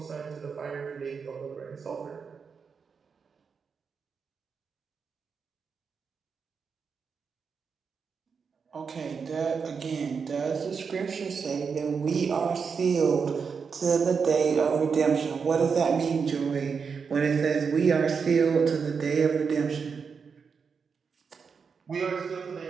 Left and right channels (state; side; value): quieter; left; 5.8 dB